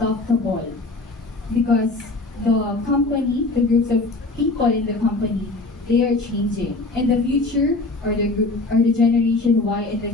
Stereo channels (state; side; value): quieter; right; 3.2 dB